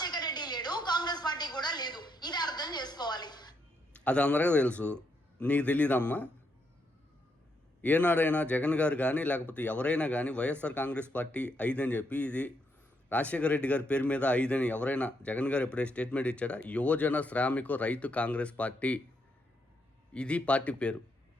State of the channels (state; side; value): normal; both; correlation 0.78